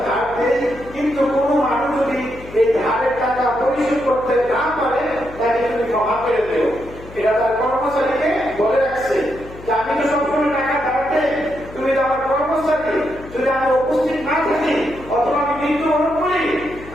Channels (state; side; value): noise; left; hum, 17 dB below the sound